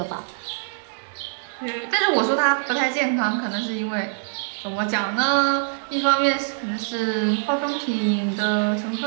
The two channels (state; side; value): silent; left; digital silence